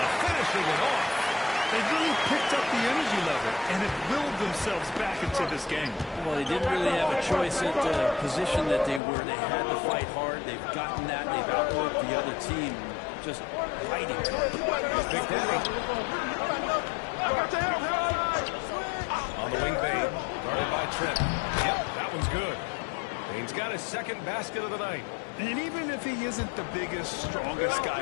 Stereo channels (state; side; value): drops out; right; at 9.0 s